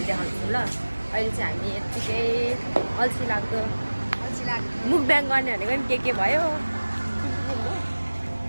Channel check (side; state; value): both; inverted; correlation -1.00